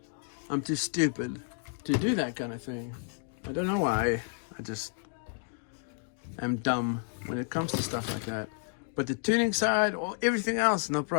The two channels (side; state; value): right; silent; 57 dB below the other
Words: I'm too stupid to do that kind of thing. I don't know why. I just am dumb when it comes to stuff like that. But the tuning side or everything else, no